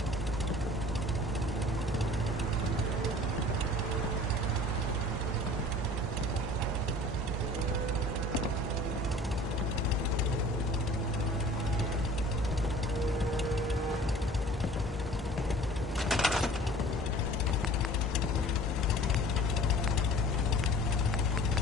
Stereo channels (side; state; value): both; normal; correlation 0.46